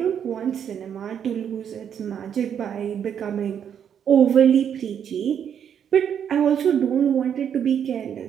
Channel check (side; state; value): left; quieter; 8.5 dB